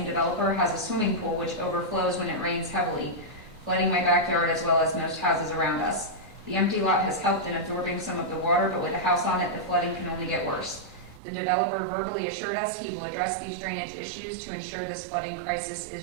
developer, has a swimming pool which overflows when it rains heavily, flooding my backyard as well as most houses around us. The empty lot has helped in absorbing some of the water, but with a house on it, the flooding can only get worse. The developer verbally assured us he will address these drainage issues to ensure this flooding crisis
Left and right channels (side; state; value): left; drops out; at 11.2 s